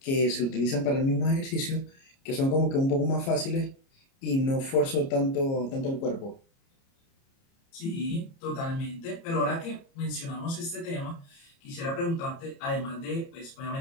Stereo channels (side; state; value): right; late; 30 ms